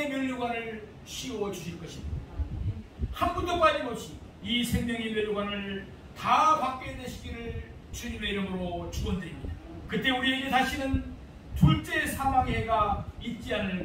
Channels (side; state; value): both; identical; correlation 1.00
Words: 멸류관을 씌워 주실 것입니다. 한 분도 빠짐없이 이 생명의 멸류관을 다 받게 되시기를 주님의 이름으로 축원드립니다. 그때 우리에게 다시는 둘째 사망의 해가 있지 않을